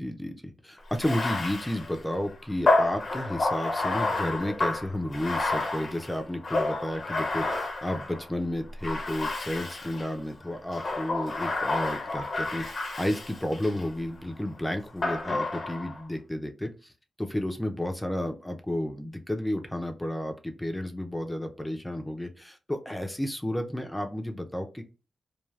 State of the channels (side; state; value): both; normal; correlation 0.94